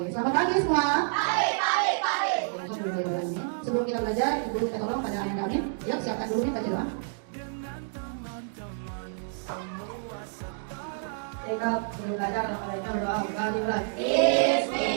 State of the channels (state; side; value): silent; left; digital silence